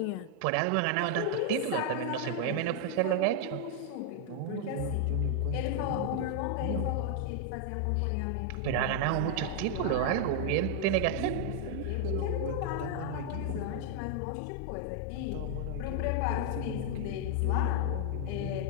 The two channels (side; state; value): both; different; correlation 0.00